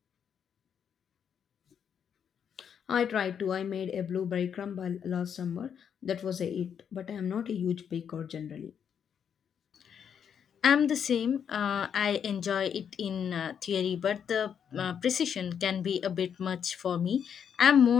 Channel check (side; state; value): right; quieter; 7.9 dB